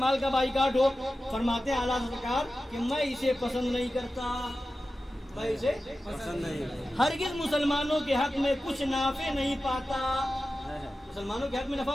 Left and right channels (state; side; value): normal; both; correlation 0.94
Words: کا بائیکاٹ ہو. فرماتے ہیں اعلیٰ سرکار کہ میں اسے پسند نہیں کرتا، میں اسے پسند نہیں، ہرگز مسلمانوں کے حق میں کچھ نافع نہیں پاتا. مسلمانوں کے حق میں نفع